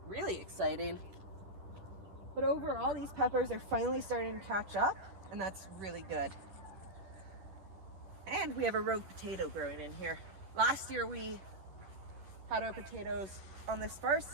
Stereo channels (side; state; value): left; late; 10 ms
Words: really exciting. But overall, these peppers are finally starting to catch up, and that's really good. And we have a rogue potato growing in here. Last year we had our potatoes on this far